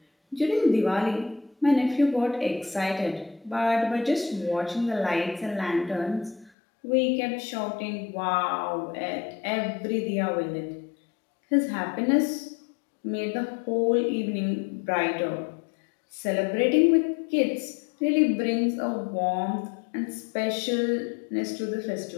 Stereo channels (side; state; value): right; drops out; at 6.5 s